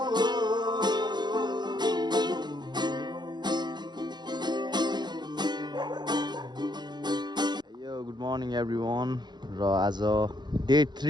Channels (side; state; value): left; late; 0.21 ms